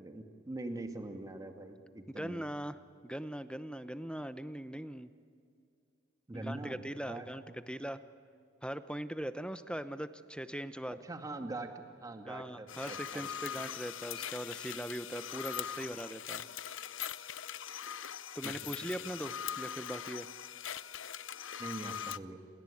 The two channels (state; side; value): normal; both; correlation 0.64